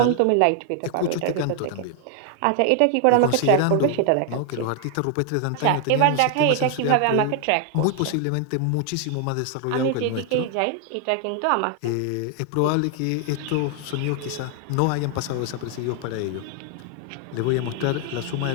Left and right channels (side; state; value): both; different; correlation 0.00